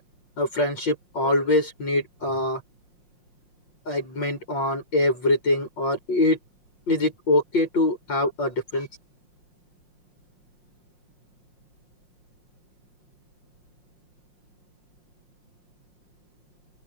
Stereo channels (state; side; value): late; right; 5.6 ms